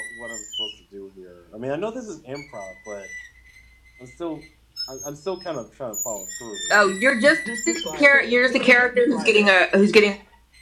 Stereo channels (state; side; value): identical; both; correlation 1.00